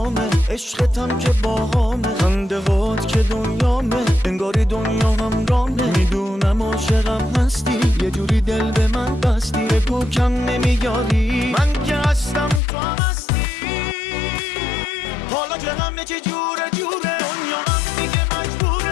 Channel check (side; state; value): right; drops out; at 12.6 s